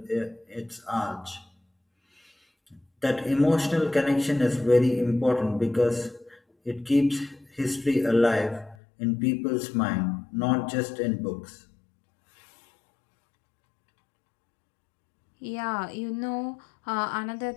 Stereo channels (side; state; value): right; drops out; at 8.8 s